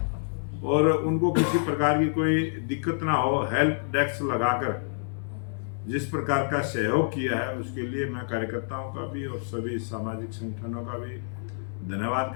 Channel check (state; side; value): silent; right; 60 dB below the other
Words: और उनको किसी प्रकार की कोई दिक्कत ना हो, हेल्प डेस्क लगाकर जिस प्रकार का सहयोग किया है, उसके लिए मैं कार्यकर्ताओं का भी और सभी सामाजिक संगठनों का भी धन्यवाद